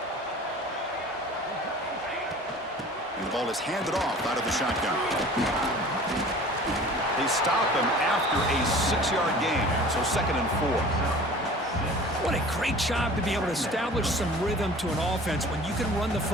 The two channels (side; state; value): both; normal; correlation 0.44